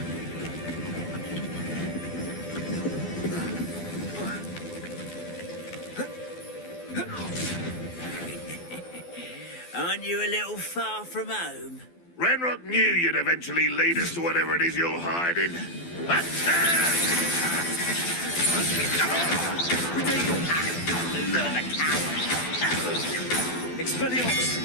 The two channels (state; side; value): late; right; 12 ms